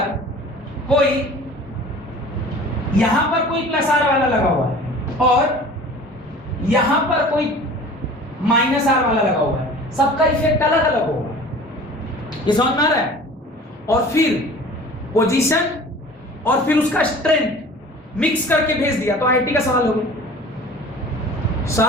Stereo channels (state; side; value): normal; both; correlation 0.43